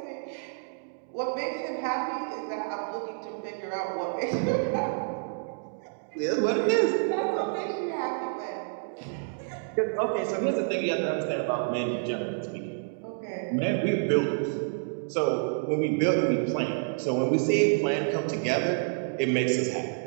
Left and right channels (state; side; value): silent; left; digital silence